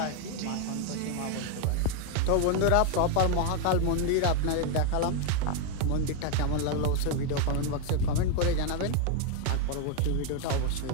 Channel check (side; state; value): both; different; correlation 0.01